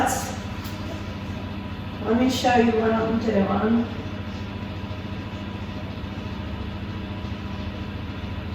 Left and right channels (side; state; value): both; identical; correlation 1.00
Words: let me show you what I'm doing.